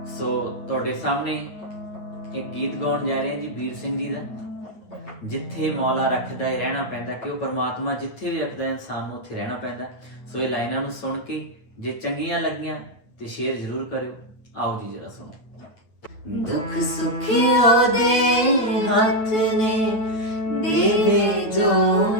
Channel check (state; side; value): late; right; 9.0 ms